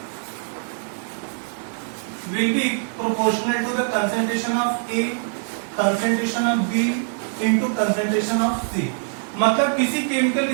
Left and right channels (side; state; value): left; silent; 63 dB below the other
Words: will be proportional to the concentration of A, concentration of B into concentration of C। मतलब किसी केमिकल